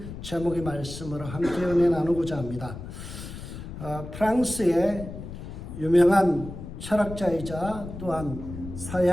제목의 말씀으로 함께 은혜 나누고자 합니다. 프랑스의 유명한 철학자이자 또한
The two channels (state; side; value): noise; left; rumble, 10 dB below the sound